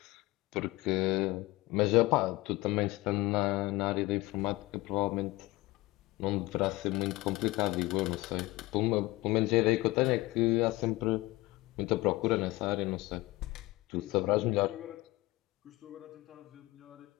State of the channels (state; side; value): quieter; right; 20.4 dB